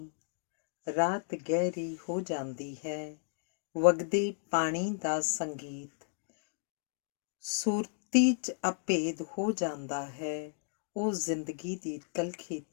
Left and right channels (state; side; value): silent; right; digital silence